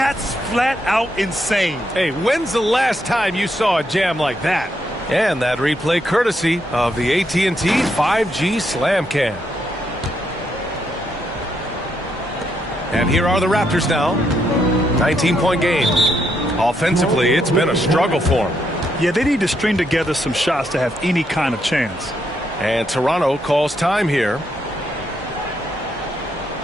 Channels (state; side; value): normal; both; correlation 0.78